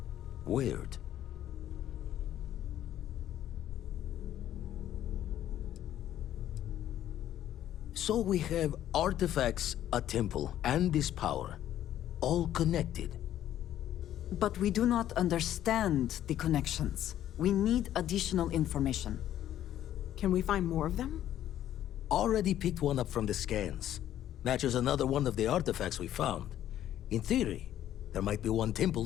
weird. So we have artifacts, a temple, and this power, all connected. But we do not understand the connections. We need additional information. Can we find more of them? Already picked one up from the scans. Matches another one of the artifacts we found. In theory, there might be one temple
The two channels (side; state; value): right; quieter; 11.8 dB